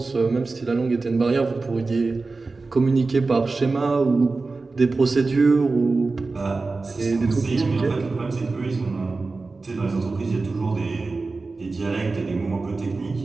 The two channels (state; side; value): quieter; left; 3.8 dB